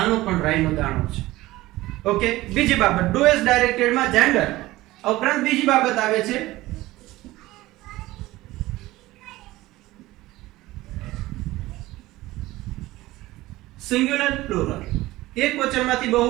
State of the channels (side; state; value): left; quieter; 17.9 dB